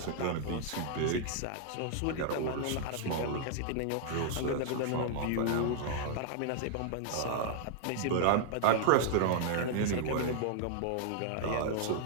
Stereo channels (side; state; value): both; different; correlation -0.01